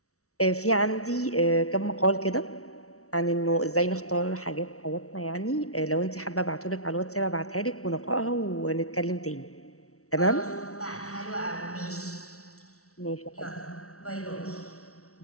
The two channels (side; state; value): right; late; 0.64 ms